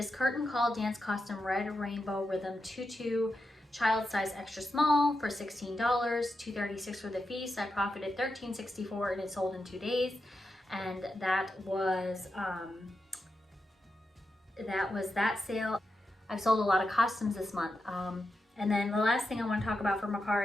curtain call dance costume red rainbow rhythm tutu child size extra small for $16, $2.36 for the fee, so I profited $13.64, and it sold in 2 days. And that was that sale. I've sold a lot of costumes this month. And then the last thing I want to talk about for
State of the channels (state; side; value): normal; both; correlation 0.88